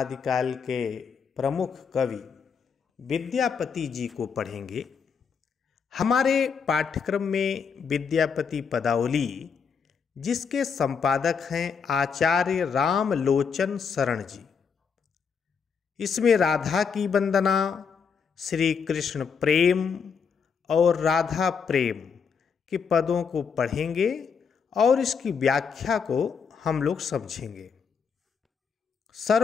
के प्रमुख कवि विद्यापति जी को पढ़ेंगे। हमारे पाठ्यक्रम में विद्यापति पदावली, जिसके संपादक हैं आचार्य रामलोचन शरण जी, इसमें राधा की वंदना, श्री कृष्ण प्रेम और राधा प्रेम के पदों को पढ़ेंगे और इसकी व्याख्या को हम लोग समझेंगे।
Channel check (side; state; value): right; quieter; 6.2 dB